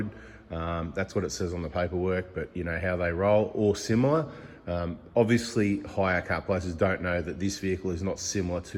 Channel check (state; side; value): identical; both; correlation 1.00